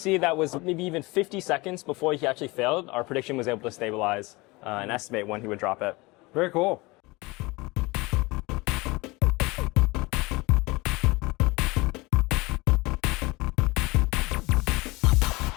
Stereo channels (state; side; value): quieter; right; 23.6 dB